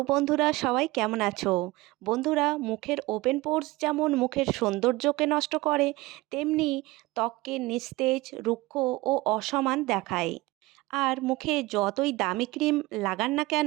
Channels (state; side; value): quieter; left; 21.0 dB